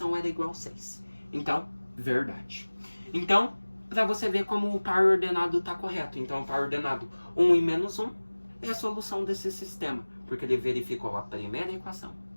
era igual a 6. Então, verdade. Então, para você ver como o par ordenado está correto. Então, o par ordenado 1 e menos 1 é a solução desse sistema. Porque ele verificou a primeira equação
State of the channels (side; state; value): both; inverted; correlation -1.00